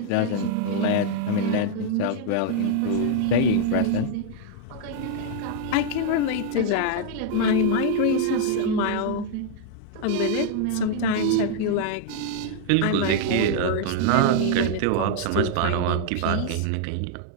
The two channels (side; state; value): both; different; correlation -0.01